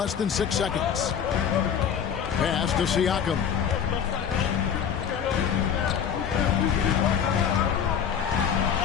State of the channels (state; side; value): quieter; right; 8.0 dB